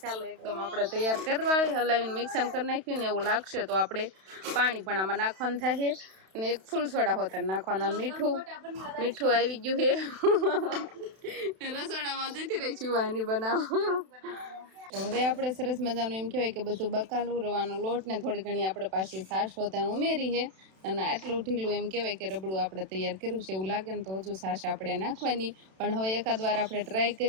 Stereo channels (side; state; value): left; late; 32 ms